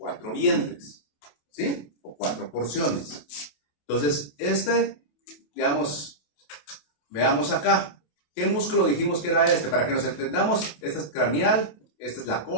vientres, ¿sí? O 4 porciones. Entonces, digamos, veamos acá. ¿Qué músculo dijimos que era este? Para que nos entendamos, este es craneal, esta es la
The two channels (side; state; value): right; late; 28 ms